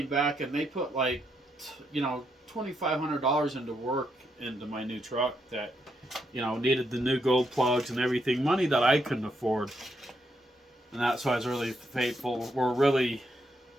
back and they put like $2,500 into work into my new truck that needed the new gold plugs and everything, money that I couldn't afford. And that's why I was really faithful. We're really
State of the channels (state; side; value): normal; both; correlation 0.78